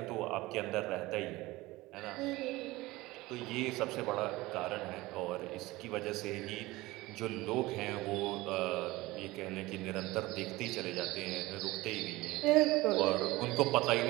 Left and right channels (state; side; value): quieter; left; 19.8 dB